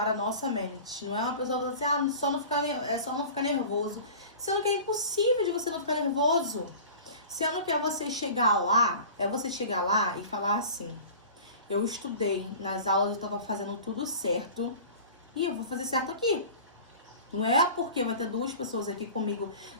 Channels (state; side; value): inverted; both; correlation -0.39